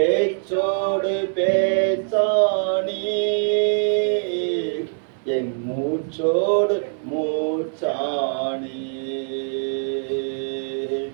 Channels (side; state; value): left; silent; digital silence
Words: பேச்சானி, என் மூச்சோடு மூச்சானி,